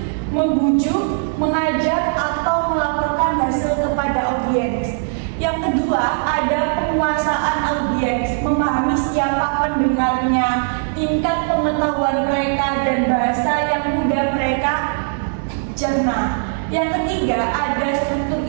membujuk, mengajak atau melaporkan hasil kepada audiens. Yang kedua ada penguasaan audiens, memahami siapa pendengarnya, tingkat pengetahuan mereka dan bahasa yang mudah mereka cerna. Yang ketiga ada struktur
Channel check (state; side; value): silent; left; digital silence